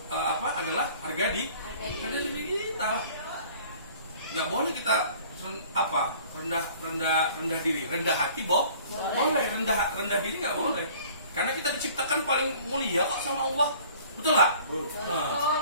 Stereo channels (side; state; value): both; inverted; correlation -0.51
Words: adalah harga diri kita. Nggak boleh kita rendah diri, rendah hati boleh, rendah diri nggak boleh. Karena kita diciptakan paling mulia kok sama Allah, betul nggak? Nah,